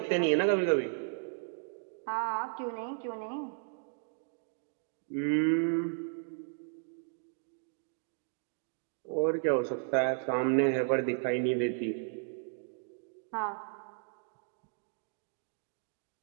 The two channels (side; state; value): left; silent; digital silence